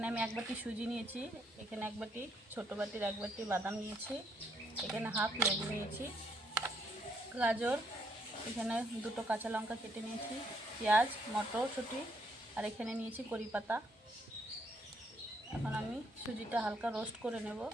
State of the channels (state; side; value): normal; both; correlation 0.71